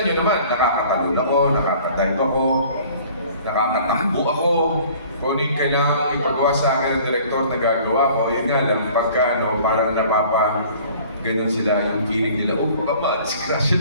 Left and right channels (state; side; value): inverted; both; correlation -0.51